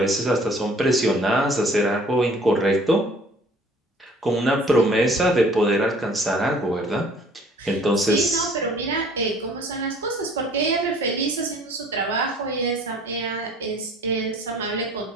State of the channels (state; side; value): normal; both; correlation 0.53